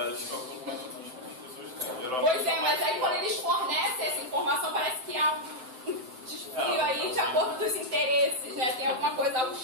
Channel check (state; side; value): late; left; 7.8 ms